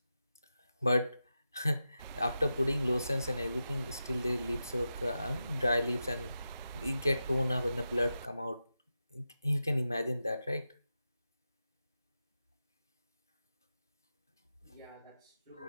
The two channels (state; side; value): inverted; both; correlation -0.90